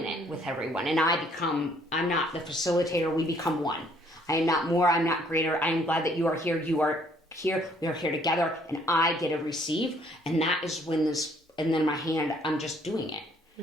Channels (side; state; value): both; normal; correlation 0.63